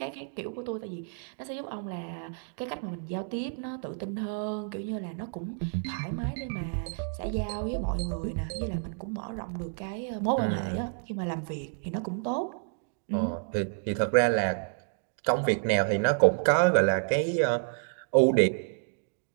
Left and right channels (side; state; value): left; silent; 58 dB below the other